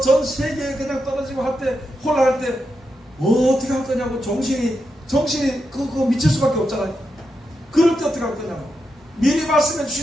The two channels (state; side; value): normal; both; correlation 0.86